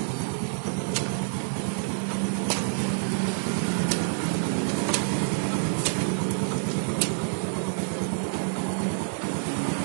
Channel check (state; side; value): silent; left; digital silence